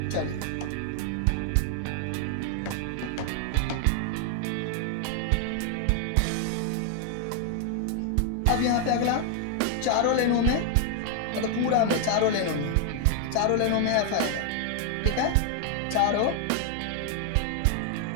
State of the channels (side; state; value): both; different; correlation 0.00